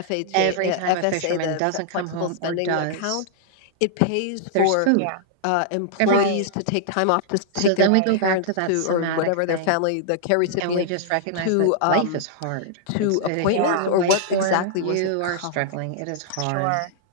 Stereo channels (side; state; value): both; different; correlation -0.01